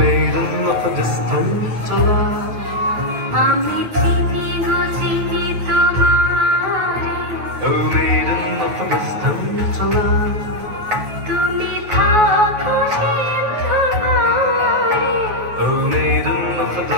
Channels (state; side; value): late; left; 9.4 ms